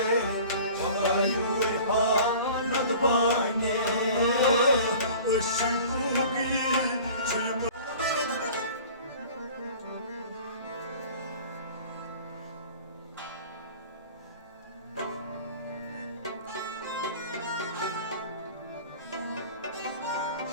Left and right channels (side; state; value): both; inverted; correlation -0.44